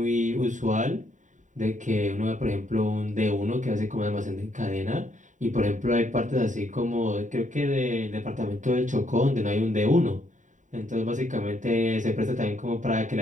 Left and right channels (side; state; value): left; late; 0.36 ms